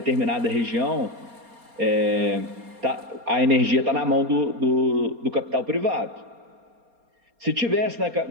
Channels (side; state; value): left; late; 4.3 ms